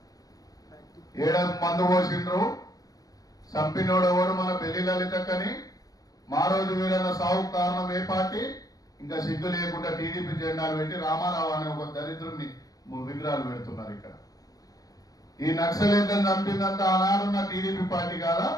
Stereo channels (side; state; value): right; late; 0.18 ms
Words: 7 మందు పోసిండ్రు. చంపినోడెవడు? మన బెల్లి లలితక్కని. మారోజు వీరన్న సావుకు కారణం ఏ పార్టీ? ఇంకా సిగ్గు లేకుండా టీడీపీ జెండాలు పెట్టి రామారావు అనే ఒక దరిద్రుడిని విగ్రహాలు పెడుతున్నారు ఇక్కడ. ఈ నక్సలేట్లను చంపిందంతా ఆనాడున్న టీడీపీ పార్టీ కాదా?